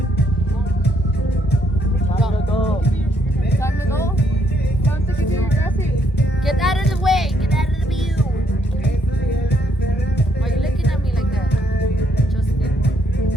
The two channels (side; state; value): both; normal; correlation 0.72